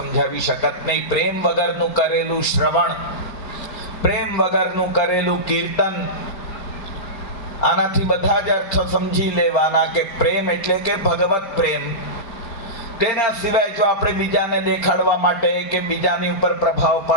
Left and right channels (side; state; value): right; late; 5.1 ms